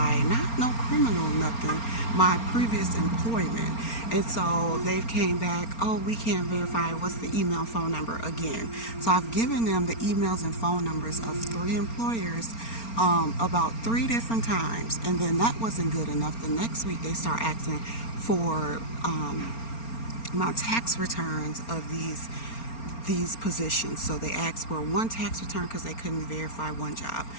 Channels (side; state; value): right; late; 4.3 ms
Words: not no criminal, nothing, my previous employment. And so they've came back, oh, we can't verify, what's the email phone number again. So I've given them the emails and phone numbers of 3 employers about 3 different times. And then that wasn't good enough. The next week they start asking for my tax returns of these positions. So they asked for one tax return because they couldn't verify one job.